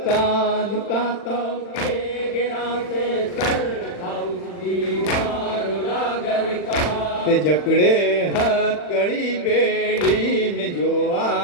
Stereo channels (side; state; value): right; late; 40 ms